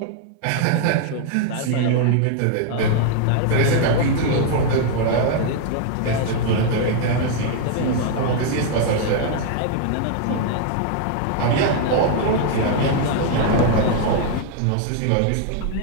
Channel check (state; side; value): different; both; correlation 0.00